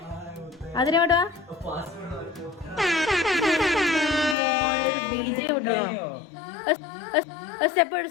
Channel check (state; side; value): drops out; right; at 4.4 s